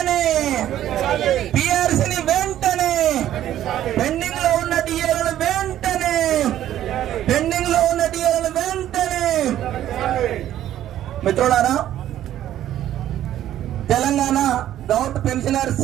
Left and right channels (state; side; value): quieter; left; 12.1 dB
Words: పిఆర్సీని వెంటనే, పెండింగ్ లో ఉన్న డిఏలను వెంటనే, పెండింగ్ లో ఉన్న డిఏలను వెంటనే. మిత్రులారా, తెలంగాణ గౌట్